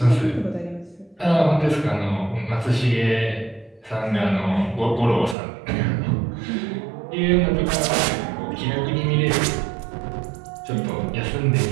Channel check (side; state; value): left; drops out; at 5.4 s